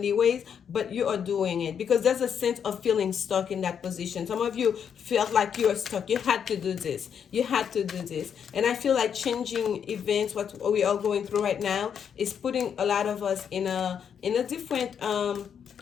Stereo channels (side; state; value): right; quieter; 7.8 dB